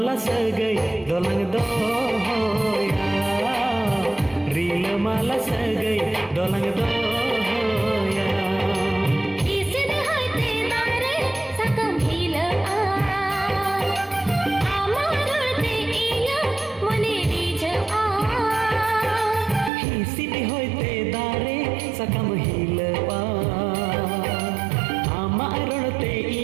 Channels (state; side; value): drops out; left; at 19.7 s